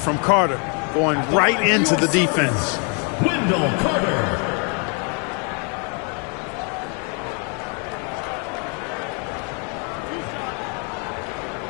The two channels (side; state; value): right; quieter; 36.7 dB